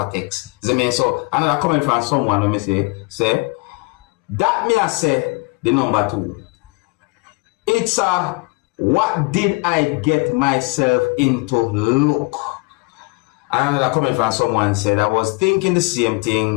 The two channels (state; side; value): quieter; right; 28.0 dB